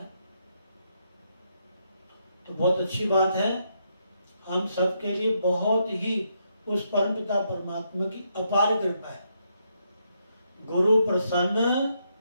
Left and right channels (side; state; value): both; inverted; correlation -0.77